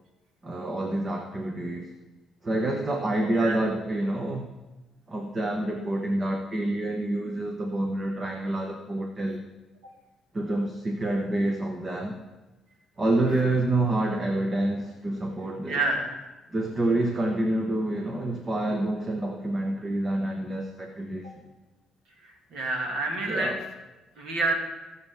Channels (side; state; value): both; normal; correlation 0.82